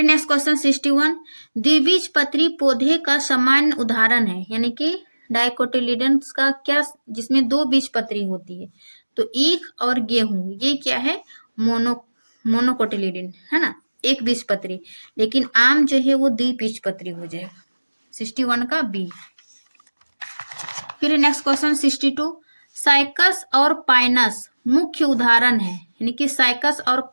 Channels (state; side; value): inverted; both; correlation -1.00